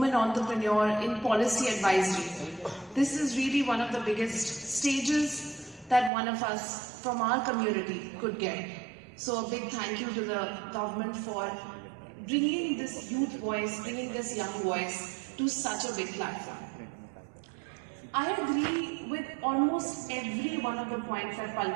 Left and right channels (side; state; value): left; drops out; at 6.1 s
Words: entrepreneur in policy advisory, this is really one of the biggest stages that one of us from our community could get. So a big thank you to the government for bringing this youth voice, bringing this young voice to such a big platform. I agree with almost every one of the points that